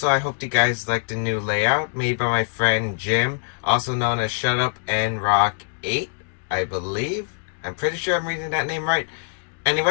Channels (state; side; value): silent; right; digital silence